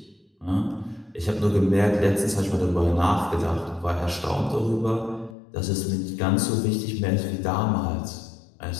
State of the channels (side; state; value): right; drops out; at 5.4 s